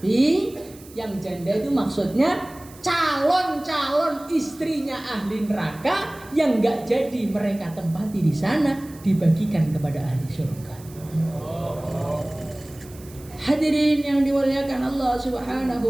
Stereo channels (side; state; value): right; noise; hiss, 22 dB below the sound